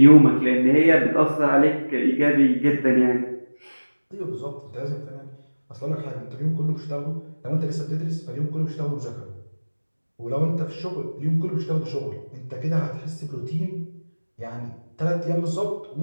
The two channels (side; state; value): both; inverted; correlation -1.00